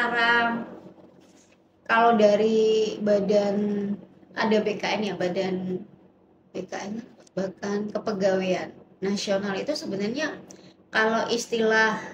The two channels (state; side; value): identical; both; correlation 1.00